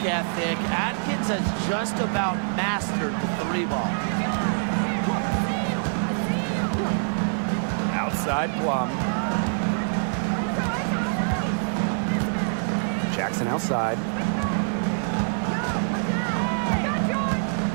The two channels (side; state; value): left; silent; digital silence